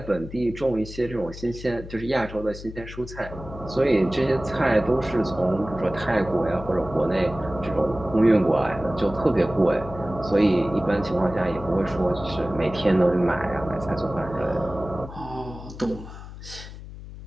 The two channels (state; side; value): noise; left; hum, 13 dB below the sound